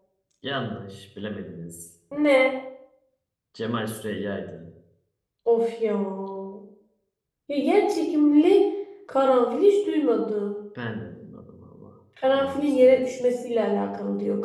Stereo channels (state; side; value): identical; both; correlation 1.00